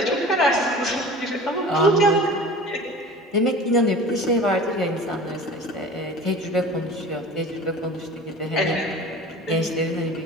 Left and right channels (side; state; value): both; normal; correlation 0.39